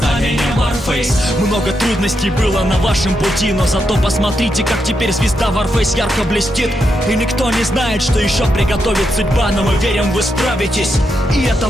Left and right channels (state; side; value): normal; both; correlation 0.83